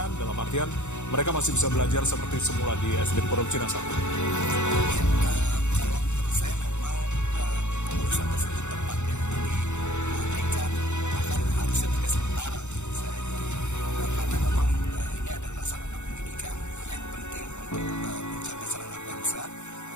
dalam artian mereka masih bisa belajar seperti semula di SDN Pondok Cina 1? Ya, kalau menurut saya memang keputusan tersebut tepat ya. Jadi menghentikan, bahkan harusnya tidak sementara menurut saya. Jadi karena memang ini adalah sarana pendidikan yang penting untuk pencerdasan anak bangsa.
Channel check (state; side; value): late; right; 0.83 ms